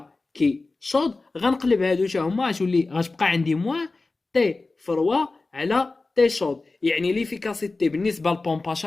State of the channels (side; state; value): right; quieter; 3.5 dB